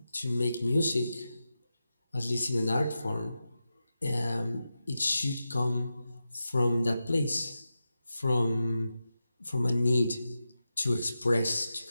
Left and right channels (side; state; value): both; inverted; correlation -0.91